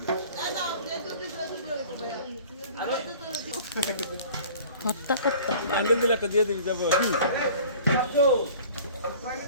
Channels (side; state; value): both; inverted; correlation -0.46